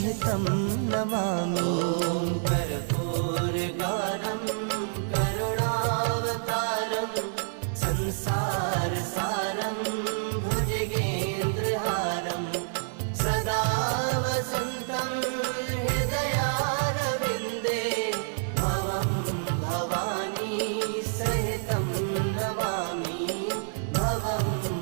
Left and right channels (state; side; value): silent; left; 59 dB below the other